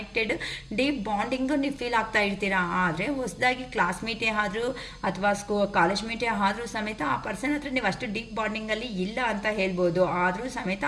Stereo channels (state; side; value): identical; both; correlation 1.00